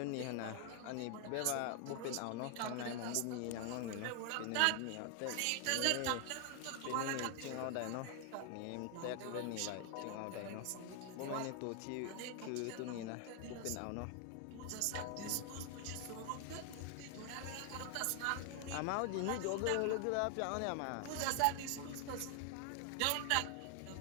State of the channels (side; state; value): both; different; correlation 0.00